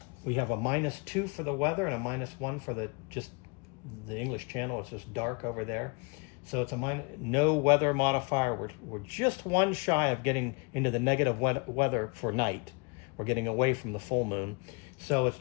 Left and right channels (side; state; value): right; quieter; 33.0 dB